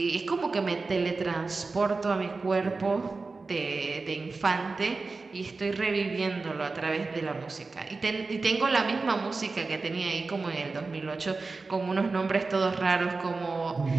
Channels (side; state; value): left; quieter; 3.9 dB